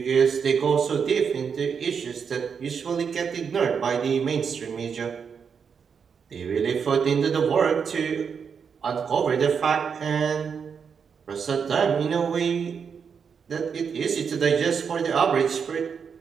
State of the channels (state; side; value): quieter; left; 6.5 dB